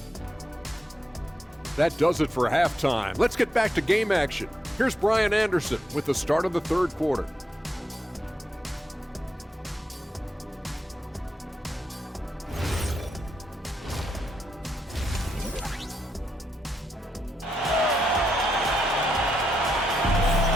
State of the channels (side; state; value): both; normal; correlation 0.81